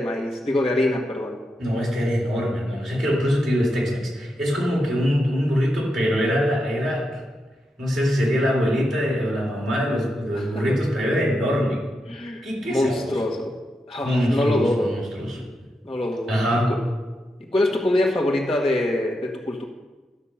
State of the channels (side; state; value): both; normal; correlation 0.86